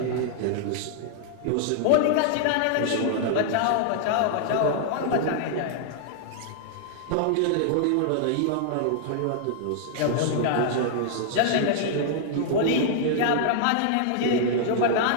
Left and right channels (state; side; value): different; both; correlation -0.01